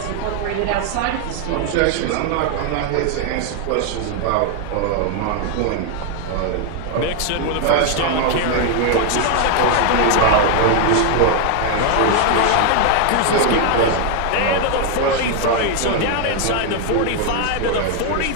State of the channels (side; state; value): both; different; correlation 0.00